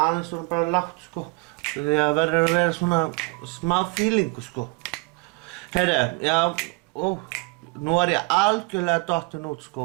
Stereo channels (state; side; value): quieter; left; 28.8 dB